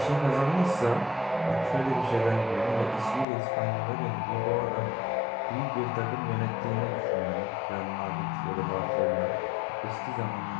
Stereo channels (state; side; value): drops out; right; at 3.2 s